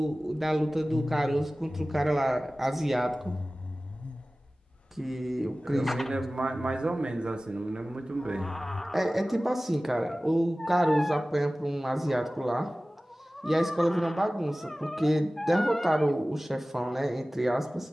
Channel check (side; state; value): both; normal; correlation 0.97